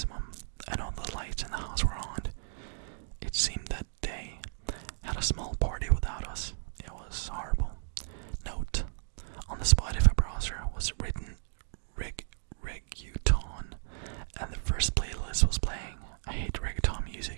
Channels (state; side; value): silent; left; digital silence